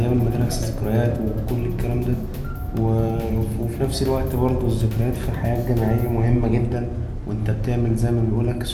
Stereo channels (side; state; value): both; identical; correlation 1.00